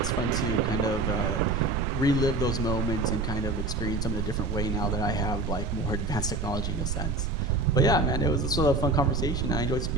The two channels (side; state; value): right; noise; rumble, 2 dB below the sound